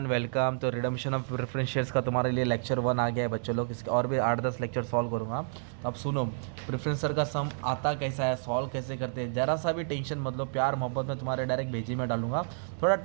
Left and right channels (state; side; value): silent; left; 58 dB below the other